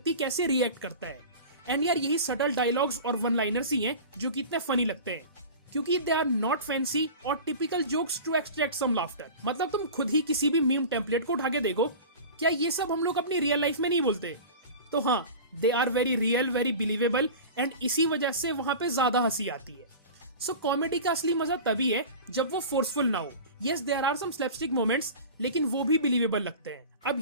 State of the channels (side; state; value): both; inverted; correlation -0.35